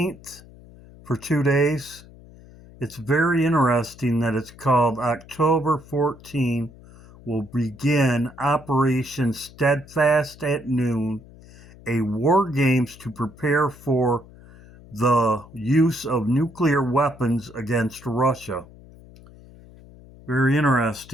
for 2 days. It's very interesting that it's called October 14 will begin Operation Steadfast at noon, a war games to prepare for the use of nuclear weapons against Russia. Very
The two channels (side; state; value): left; noise; hum, 21 dB below the sound